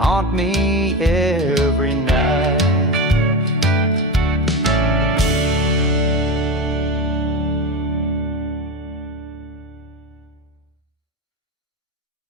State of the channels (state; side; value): normal; both; correlation 0.22